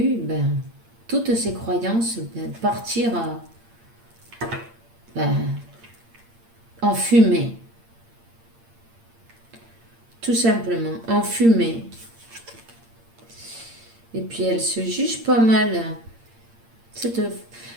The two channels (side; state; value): left; late; 8.7 ms